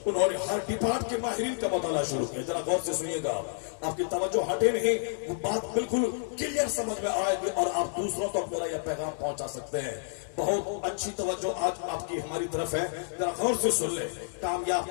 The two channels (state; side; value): silent; right; digital silence